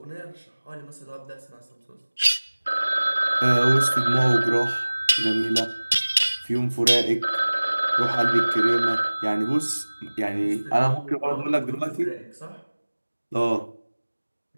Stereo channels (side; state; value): both; inverted; correlation -1.00